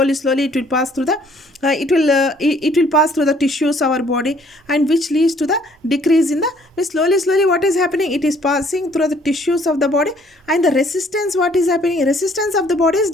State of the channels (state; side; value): normal; both; correlation 0.61